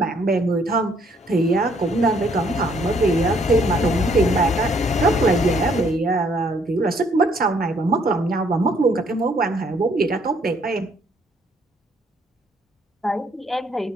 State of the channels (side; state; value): both; normal; correlation 0.66